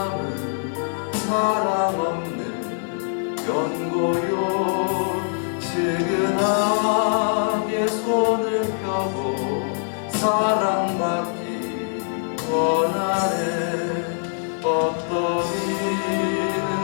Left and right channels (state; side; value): silent; right; digital silence